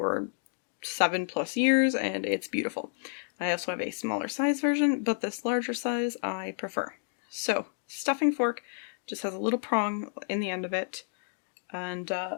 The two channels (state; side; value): silent; right; digital silence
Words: 7+ years and it's beautiful. I also have a smaller size version, but this larger size I prefer. So, stuffing fork just has a little prong in the end of it. And